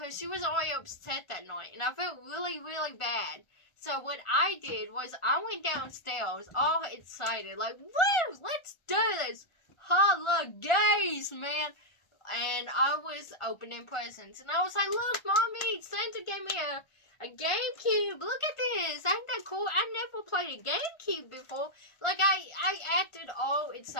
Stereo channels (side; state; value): right; late; 1.4 ms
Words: she was already upset that night. And I felt really, really bad. So what I did was I went downstairs all excited. Like, woo, let's do this. Holigays, man. And I was opening presents. And I was like, look, Mommy, Santa gave me a GameCube. Look at this. Ain't that cool? I never played a GameCube before. Like, I acted all